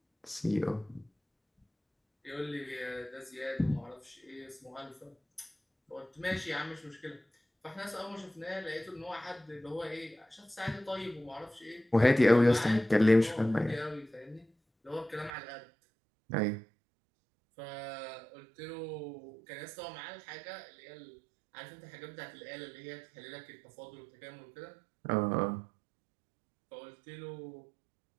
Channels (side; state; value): left; drops out; at 15.3 s